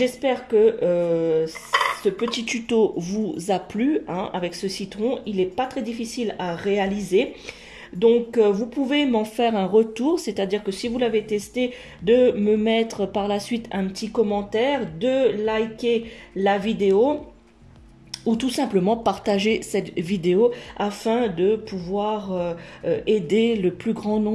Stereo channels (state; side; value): identical; both; correlation 1.00